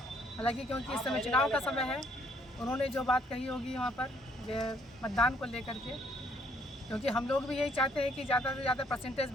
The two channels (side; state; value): both; normal; correlation 0.66